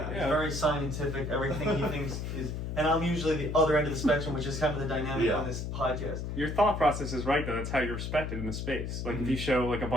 He's very scientific. Everything he thinks is, and I'm usually the other end of the spectrum, which is kind of the dynamic on this podcast. Your thought process is right, though. That's how you're respected in the space. Like, if you show like a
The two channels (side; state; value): left; noise; hum, 4 dB below the sound